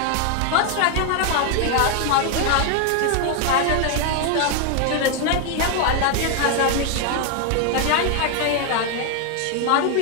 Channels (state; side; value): different; both; correlation 0.01